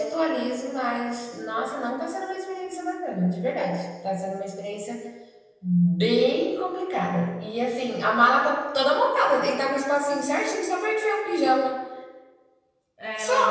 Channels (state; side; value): identical; both; correlation 1.00